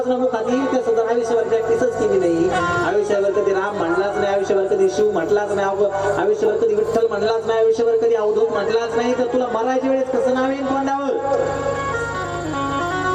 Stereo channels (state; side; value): identical; both; correlation 1.00